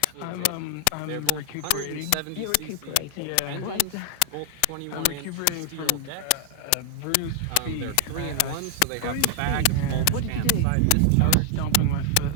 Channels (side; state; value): both; different; correlation 0.00